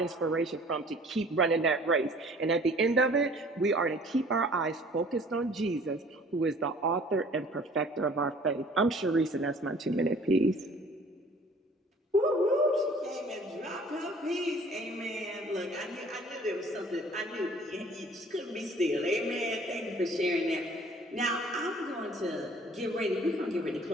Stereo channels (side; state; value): both; normal; correlation 0.52